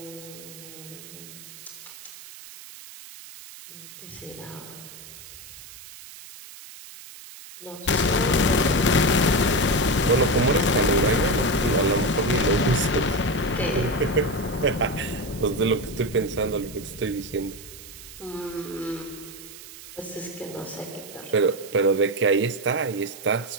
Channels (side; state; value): right; noise; hiss, 16 dB below the sound